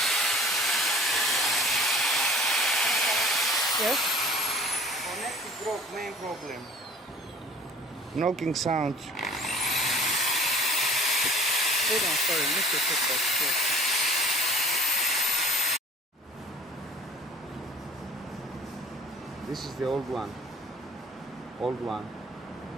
yes? Connected broke, main problem. Knocking sound. Hold on, sorry, Mr. Focus. Yes. This is the old one. Old one.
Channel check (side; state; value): both; normal; correlation 0.48